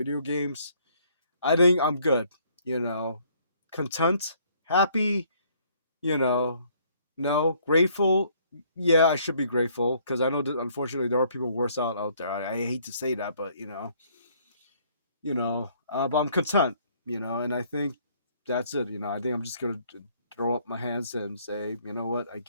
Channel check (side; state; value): both; inverted; correlation -0.63